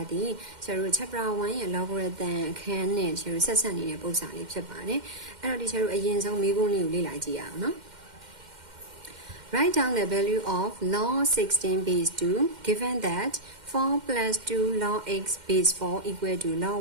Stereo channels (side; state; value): left; late; 2.1 ms